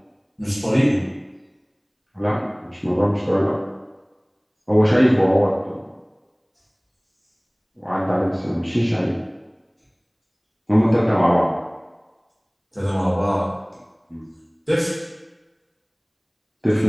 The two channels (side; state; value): both; identical; correlation 1.00